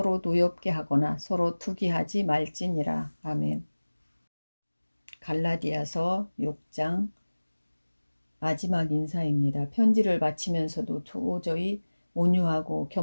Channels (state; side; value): inverted; both; correlation -1.00